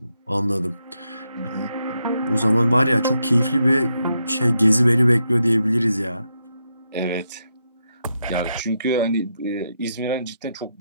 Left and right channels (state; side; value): inverted; both; correlation -0.83